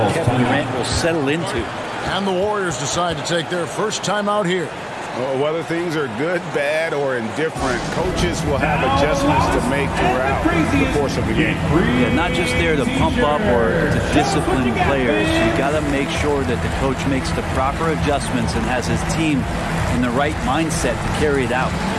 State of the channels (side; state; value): both; identical; correlation 1.00